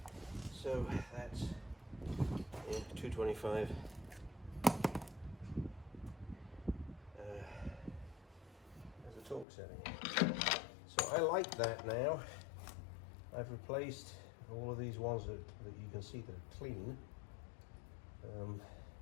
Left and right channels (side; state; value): right; drops out; at 9.5 s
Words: so that's 225 as a torque setting. So I like that now. I've replaced all of these ones that you can see that are clean,